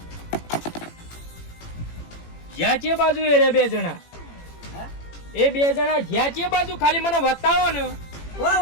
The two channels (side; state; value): right; late; 18 ms